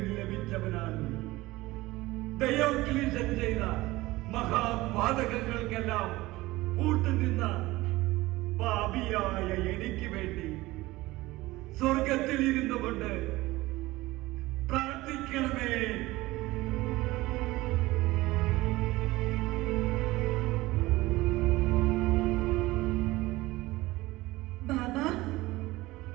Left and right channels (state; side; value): quieter; left; 19.2 dB